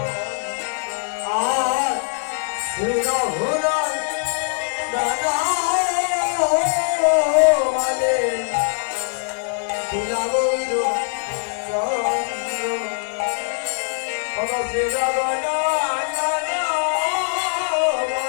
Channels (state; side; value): silent; right; digital silence